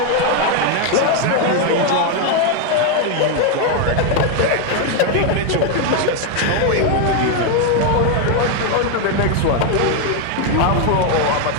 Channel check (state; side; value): different; both; correlation 0.01